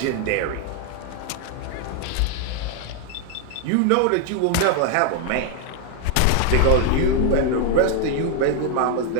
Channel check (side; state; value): both; different; correlation 0.00